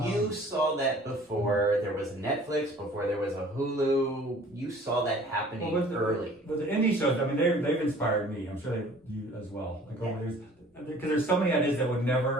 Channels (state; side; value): normal; both; correlation 0.51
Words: you saw that before there was Netflix, before there was a Hulu. You saw that happening early. With the indie shows, I mean, they've inspired me. I'm sure you as well. Like over years, because there's so many ideas that would